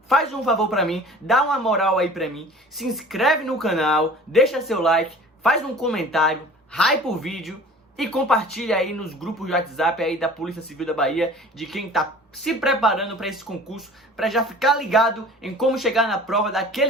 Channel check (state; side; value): normal; both; correlation 0.44